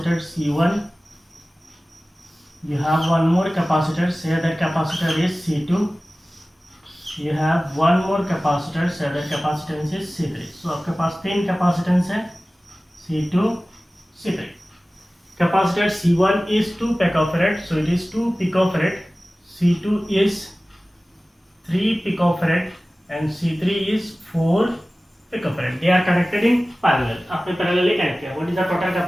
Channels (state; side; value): normal; both; correlation 0.97